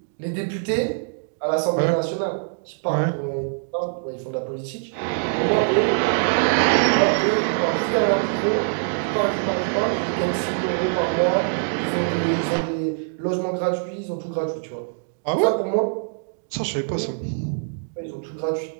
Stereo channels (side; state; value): left; silent; digital silence